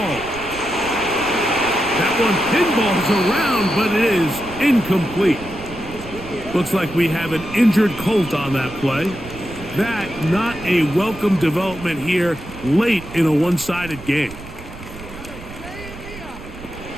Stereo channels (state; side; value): noise; right; rumble, 15 dB below the sound